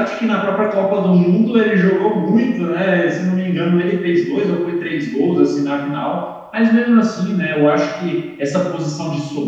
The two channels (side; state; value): both; identical; correlation 1.00